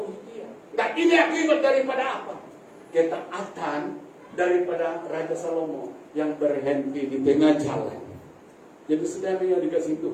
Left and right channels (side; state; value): both; identical; correlation 1.00